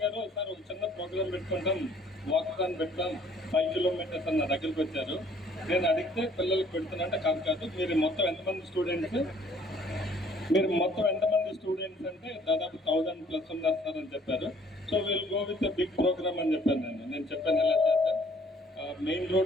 గారు సార్ ఒక చిన్న ప్రోగ్రామ్ పెట్టుకుంటాం, వాకథాన్ పెడతాం, 5 kilometers అన్న దగ్గరికి వచ్చారు. నేను అడిగితే పిల్లలకు పెడుతున్నట్టే కాదు, మీరు మొత్తం ఎంతమంది స్టూడెంట్స్ అంటే దాదాపు 1000+ ఉన్నారు సార్ అని చెప్పారు. So will go with big program అని చెప్పాను. నేను చెప్పాను ఎలా చేద్దాం, మెయిన్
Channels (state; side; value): normal; both; correlation 0.59